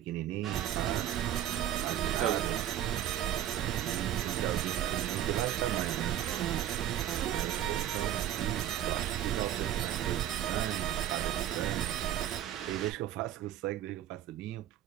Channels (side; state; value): left; quieter; 11.6 dB